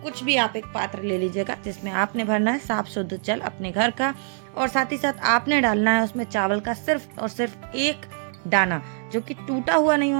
कुछ भी आप एक पात्र ले लीजिएगा, जिसमें आपने भरना है साफ शुद्ध जल अपने घर का, और साथ ही साथ आपने डालना है उसमें चावल का सिर्फ और सिर्फ एक दाना, जो कि टूटा हुआ नहीं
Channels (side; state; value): left; silent; 63 dB below the other